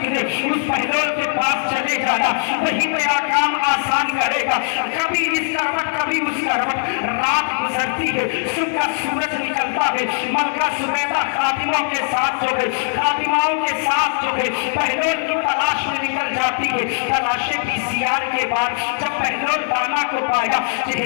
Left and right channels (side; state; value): right; silent; digital silence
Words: اس بہلول کے پاس چلے جانا، وہی میرا کام آسان کرے گا۔ کبھی اس کروٹ کبھی اس کروٹ، رات گزرتی ہے صبح کا سورج نکلتا ہے، ملکہ زبیدہ خادموں کے ساتھ جو ہے خادماؤں کے ساتھ جو ہے بہلول کی تلاش میں نکل جاتی ہے۔ تلاشے PCR کے بعد جب بہلول دانا کو پایا،